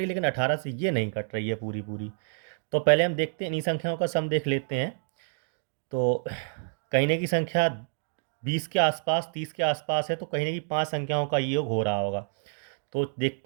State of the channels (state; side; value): silent; left; digital silence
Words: है लेकिन 18 से ये नहीं कट रही है पूरी पूरी। तो पहले हम देखते हैं इन्हीं संख्याओं का सम देख लेते हैं। तो कहने की संख्या 20 के आसपास 30 के आसपास है तो कहने की 5 संख्याओं का योग हो रहा होगा। तो